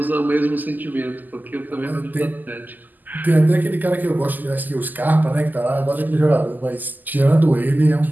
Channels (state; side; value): late; left; 0.085 ms